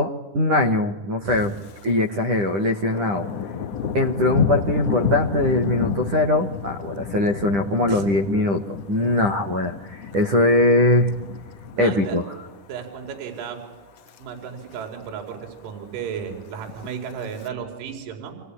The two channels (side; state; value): left; late; 10 ms